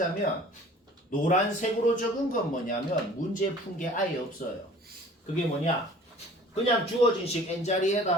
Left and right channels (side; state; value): both; normal; correlation 0.48